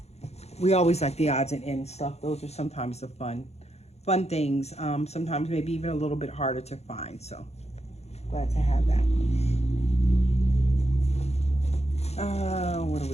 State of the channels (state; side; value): late; right; 0.31 ms